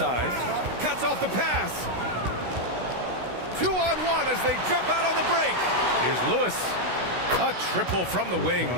Cuts off the pass. 2-on-1 as they jump out on the break. Here's Lewis. A triple from the wing.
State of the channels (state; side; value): late; left; 16 ms